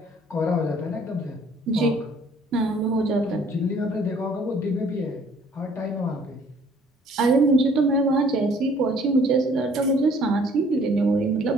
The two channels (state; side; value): normal; both; correlation 0.58